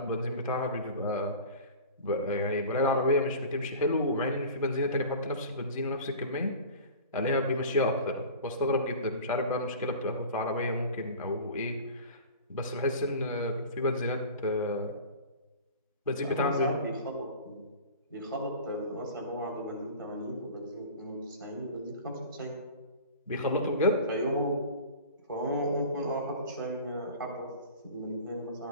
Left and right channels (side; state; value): both; inverted; correlation -0.39